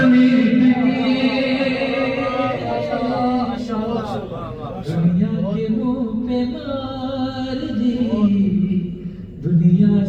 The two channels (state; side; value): identical; both; correlation 1.00